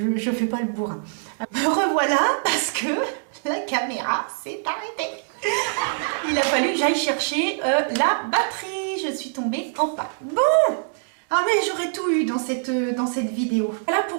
je fais pas le bourrin. Me revoilà parce que la caméra s'est arrêtée. Il a fallu que j'aille chercher la batterie. Je suis tombée en panne. Bon, ah mais j'aurais tout eu dans cette vidéo. Voilà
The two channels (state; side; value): silent; left; digital silence